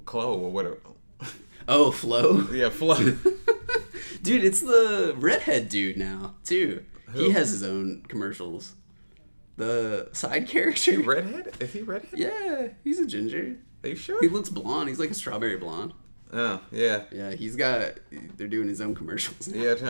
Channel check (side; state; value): both; inverted; correlation -1.00